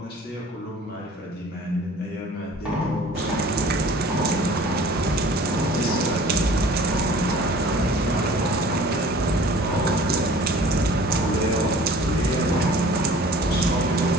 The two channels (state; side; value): normal; both; correlation 0.48